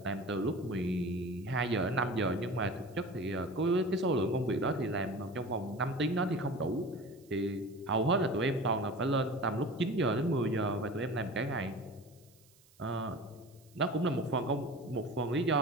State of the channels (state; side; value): noise; right; hiss, 29 dB below the sound